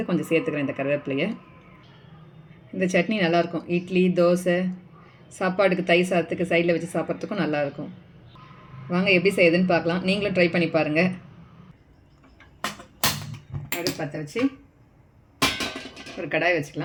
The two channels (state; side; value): identical; both; correlation 1.00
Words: கொஞ்சம் சேர்த்துக்கிறேன் இந்த கருவேப்பிலையை. இந்த சட்னி நல்லாயிருக்கும். இட்லி, தோசை, சாப்பாடுக்கு தயிர் சாதத்துக்கு சைடில் வச்சு சாப்பிட்றதுக்கும் நல்லாயிருக்கும். வாங்க எப்படி செய்யுதுன்னு பார்க்கலாம். நீங்களும் ட்ரை பண்ணி பாருங்கள். அடுப்பு பற்ற வச்சு ஒரு கடாய்